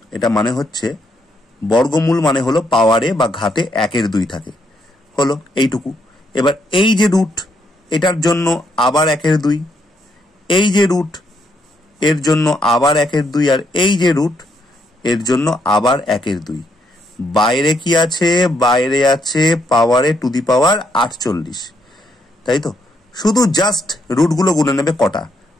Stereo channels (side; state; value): both; normal; correlation 0.75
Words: এটা মানে হচ্ছে বর্গমূল মানে হলো পাওয়ারে বা ঘাতে 1/2 থাকে, হলো এইটুকু। এবার এই যে রুট, এটার জন্য আবার 1/2, এই যে রুট এর জন্য আবার 1/2, আর এই যে রুট এর জন্য আবার 1/2। বাইরে কি আছে? বাইরে আছে পাওয়ারে টু দি পাওয়ার 48, তাই তো? শুধু জাস্ট রুটগুলো গুনে নেবে কটা,